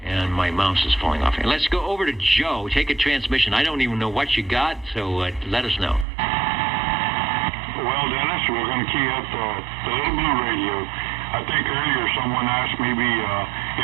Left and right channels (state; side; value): drops out; left; at 6.1 s